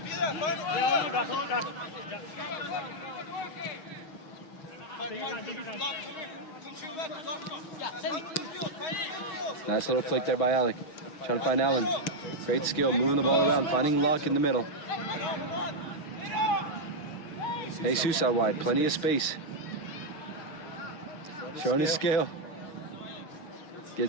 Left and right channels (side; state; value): right; late; 6.3 ms